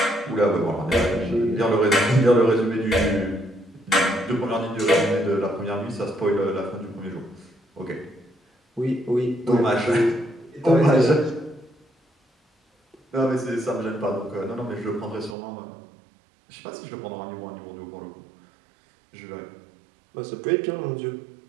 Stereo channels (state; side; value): drops out; left; at 15.4 s